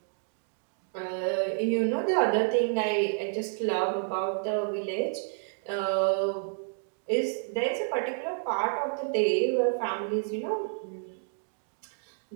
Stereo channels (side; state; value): left; silent; digital silence